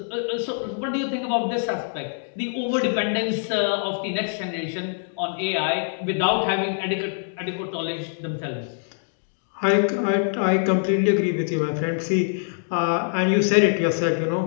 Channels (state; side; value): silent; right; digital silence